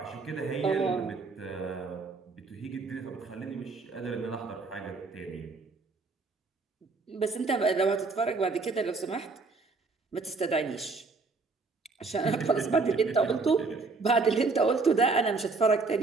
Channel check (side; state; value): left; quieter; 4.0 dB